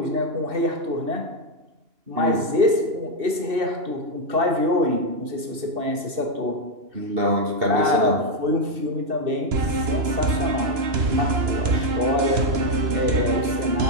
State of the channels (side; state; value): left; late; 2.6 ms